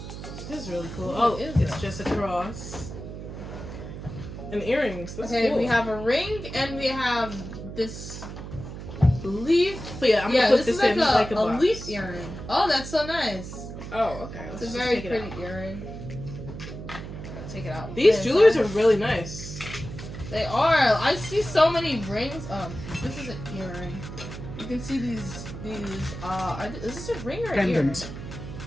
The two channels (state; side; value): noise; right; hum, 10 dB below the sound